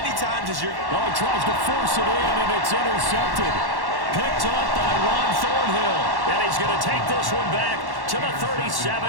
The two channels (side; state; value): left; late; 1.1 ms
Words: times as you're... Oh, he tries to force it in, and it's intercepted. Picked up by Ron Thornhill. And he's going to take this one back to the